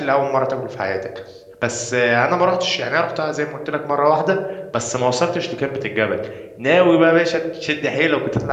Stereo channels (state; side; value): identical; both; correlation 1.00